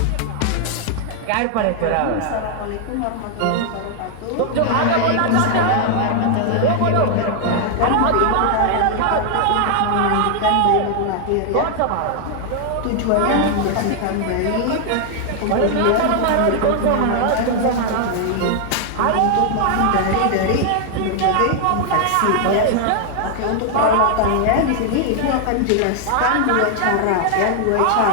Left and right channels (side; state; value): both; different; correlation 0.00